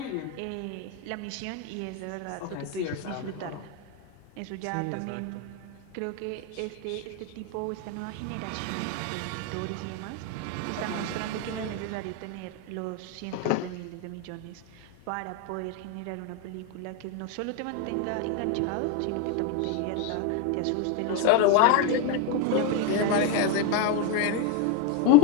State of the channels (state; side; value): different; both; correlation 0.01